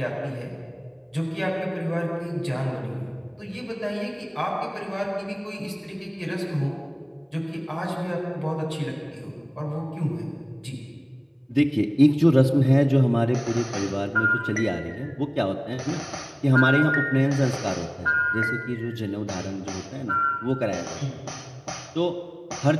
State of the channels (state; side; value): identical; both; correlation 1.00